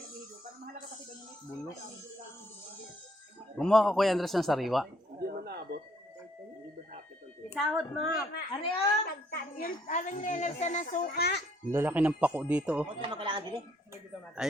Gumawa ka Kuya Andres ng sariwa. Isahod mo. Ano yun? Yung alam nila sa nasuka. Ang lalaki ng pako dito, oh.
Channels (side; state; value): both; normal; correlation 0.66